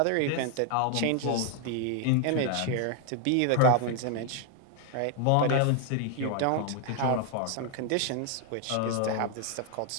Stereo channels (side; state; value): both; different; correlation 0.00